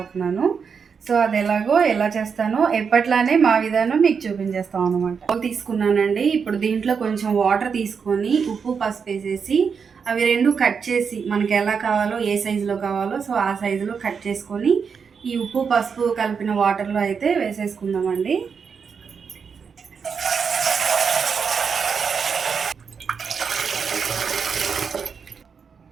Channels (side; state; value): left; quieter; 6.1 dB